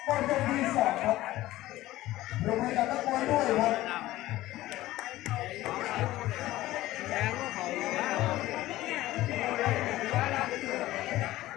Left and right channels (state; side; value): quieter; right; 16.2 dB